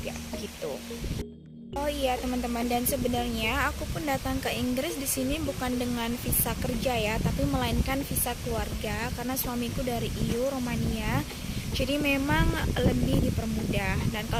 gitu. Oh iya teman-teman, dan sebenarnya aku pun datang ke Inggris di sini bukan dengan visa kerja ya, tapi melainkan visa keluarga karena suamiku dari EU Romania. Jadi memang lebih dipermudah. Dan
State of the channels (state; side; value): identical; both; correlation 1.00